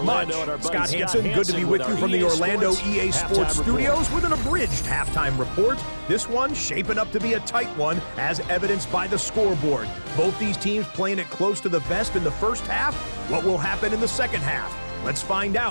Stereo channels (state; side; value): inverted; both; correlation -1.00